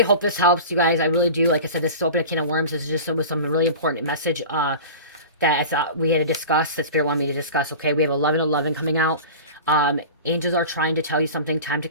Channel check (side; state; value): both; inverted; correlation -0.34